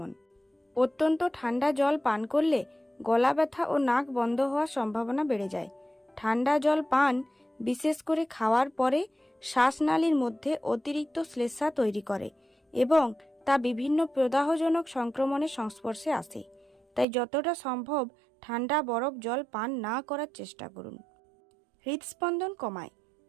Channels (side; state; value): left; drops out; at 17.1 s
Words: অত্যন্ত ঠান্ডা জল পান করলে গলা ব্যথা ও নাক বন্ধ হওয়ার সম্ভাবনা বেড়ে যায়। ঠান্ডা জল পান, বিশেষ করে খাওয়ার পরে, শ্বাসনালীর মধ্যে অতিরিক্ত শ্লেষ্মা তৈরি করে এবং তা বিভিন্ন প্রদাহজনক সংক্রমণের সংস্পর্শে আসে। তাই যতটা সম্ভব ঠান্ডা বরফ জল পান না করার চেষ্টা করুন। হৃদস্পন্দন কমায়।